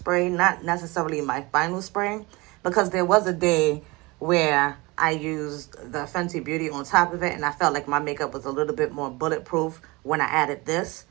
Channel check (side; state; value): left; quieter; 24.0 dB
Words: not necessarily my final spray, because there was a day where I used the Fenty Beauty on top of it, and I felt like my makeup was a little bit more bulletproof when I added this.